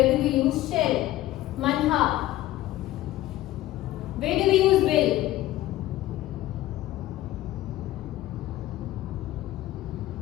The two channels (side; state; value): right; quieter; 15.3 dB